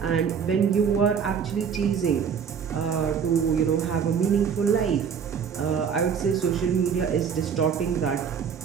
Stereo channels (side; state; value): left; quieter; 7.0 dB